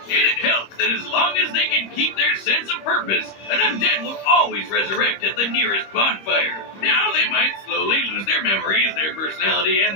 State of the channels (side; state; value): right; late; 25 ms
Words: And it helps that as long as they can keep their sense of purpose, an undead will always resurrect at the nearest bonfire. Now they might slowly lose their memories, their personality,